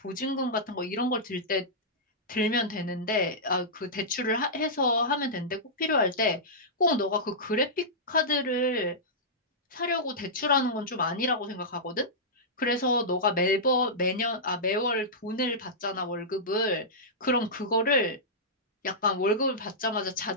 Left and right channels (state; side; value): normal; both; correlation -0.13